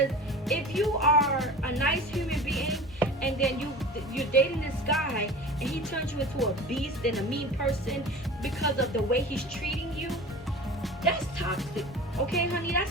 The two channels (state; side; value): normal; both; correlation 0.37